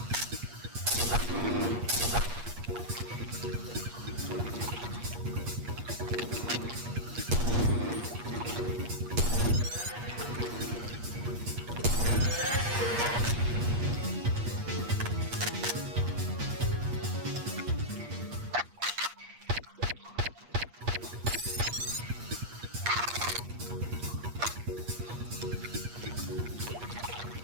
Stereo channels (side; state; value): left; late; 8.4 ms